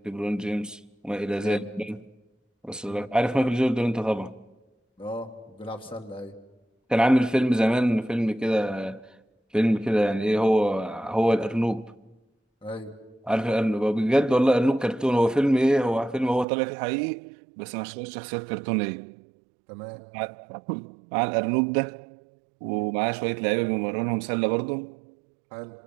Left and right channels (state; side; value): drops out; left; at 16.4 s